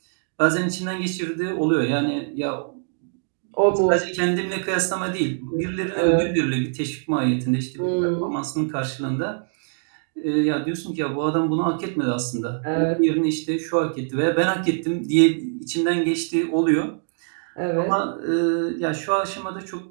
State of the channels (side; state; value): left; silent; digital silence